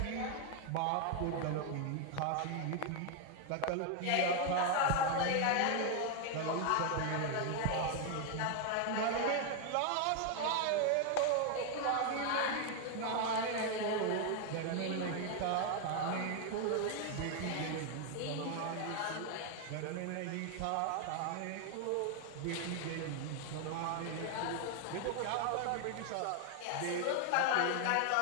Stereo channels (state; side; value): different; both; correlation 0.00